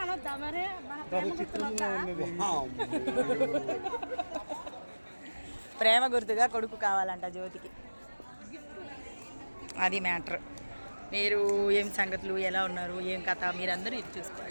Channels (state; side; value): inverted; both; correlation -1.00